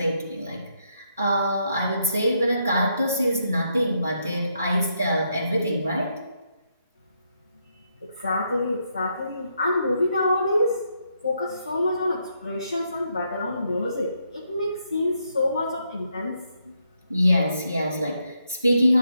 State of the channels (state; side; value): inverted; both; correlation -0.78